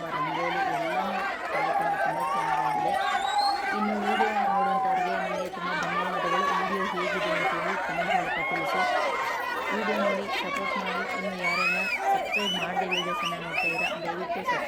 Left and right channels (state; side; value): identical; both; correlation 1.00